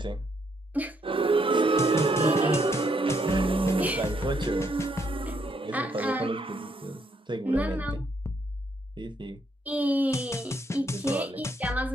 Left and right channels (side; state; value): both; normal; correlation 0.74